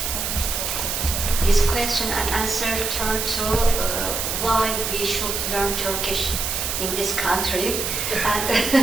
This question and answer turn to why we should learn Turkish in this country.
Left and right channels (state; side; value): noise; right; hiss, 2 dB below the sound